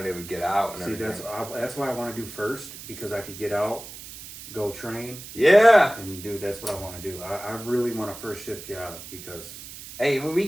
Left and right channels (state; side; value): noise; right; hiss, 13 dB below the sound